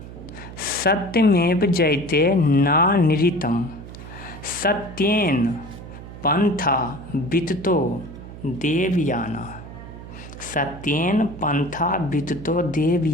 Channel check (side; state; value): right; noise; hum, 14 dB below the sound